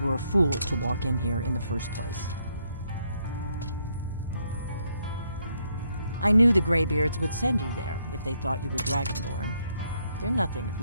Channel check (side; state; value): both; inverted; correlation -0.74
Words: a fool to walk in here in the first place. I knew the Greybeards would send you there if they thought you were Dragonborn. They're nothing if